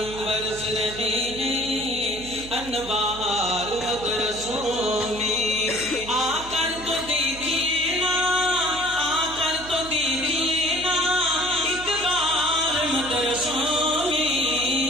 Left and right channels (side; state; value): right; noise; hum, 15 dB below the sound